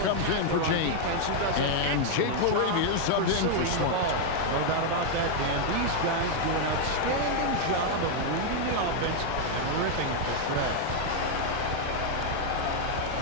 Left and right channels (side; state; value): both; different; correlation 0.00